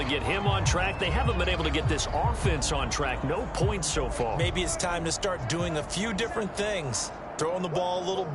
get him on track. They haven't been able to get this offense on track. No points so far. Maybe it's time to start doing a few different things. Throwing the ball a little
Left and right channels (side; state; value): both; identical; correlation 1.00